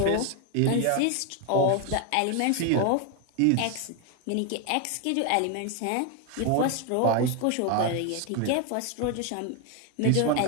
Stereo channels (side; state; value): both; different; correlation 0.01